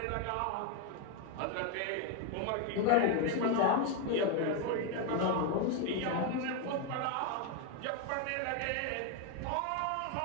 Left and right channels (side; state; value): both; different; correlation 0.01